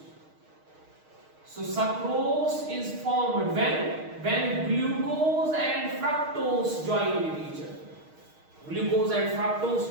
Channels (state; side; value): late; left; 6.4 ms